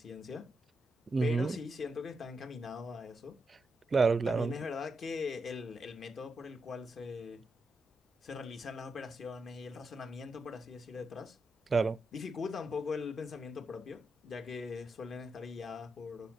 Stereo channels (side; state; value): both; normal; correlation 0.85